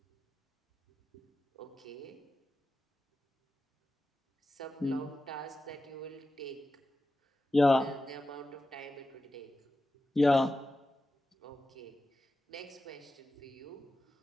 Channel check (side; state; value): both; normal; correlation 0.92